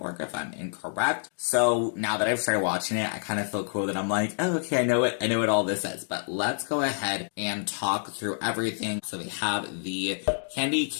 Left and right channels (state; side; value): silent; right; digital silence